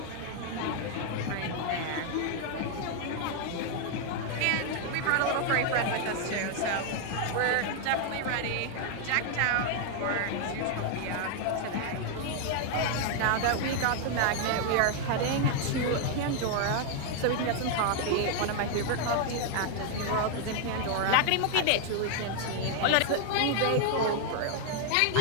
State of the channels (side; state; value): both; different; correlation 0.00